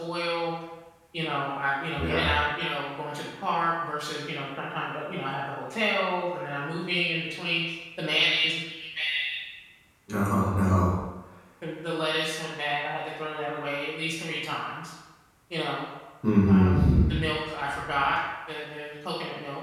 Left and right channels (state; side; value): identical; both; correlation 1.00